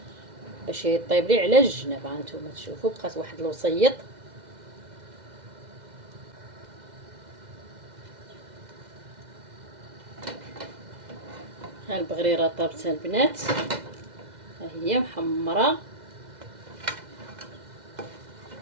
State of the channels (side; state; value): left; late; 2.0 ms